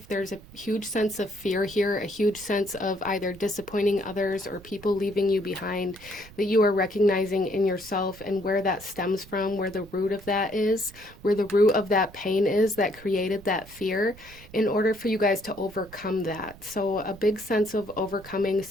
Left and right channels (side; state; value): right; noise; rumble, 20 dB below the sound